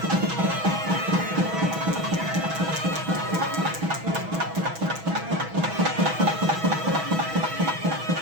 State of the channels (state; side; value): late; left; 6.2 ms